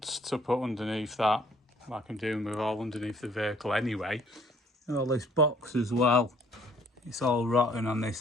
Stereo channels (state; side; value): normal; both; correlation 0.59